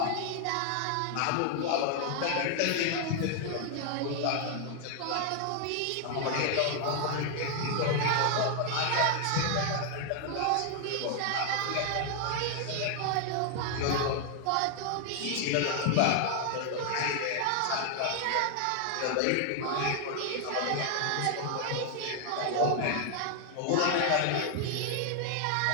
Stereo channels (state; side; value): different; both; correlation 0.00